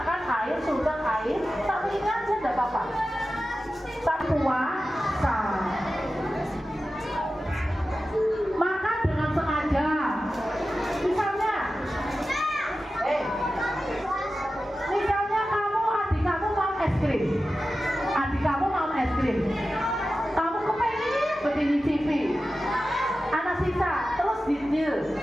air, sudah air, tapi ini aja tidak apa-apa. Tak puasa. Maka dengan sengaja, misalnya, misalnya adik kamu mau es krim, kamu kepengen begini TV, anak sisa, terus diambil,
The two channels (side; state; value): both; normal; correlation 0.94